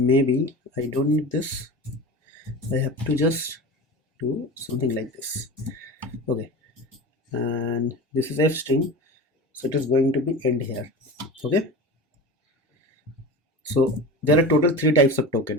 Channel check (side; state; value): both; normal; correlation 0.30